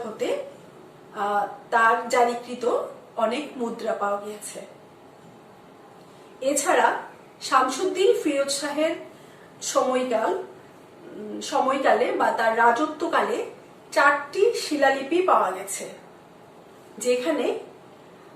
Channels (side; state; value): both; identical; correlation 1.00